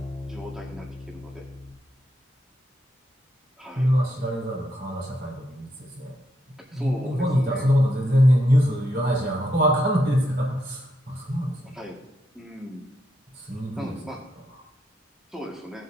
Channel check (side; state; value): both; normal; correlation 0.80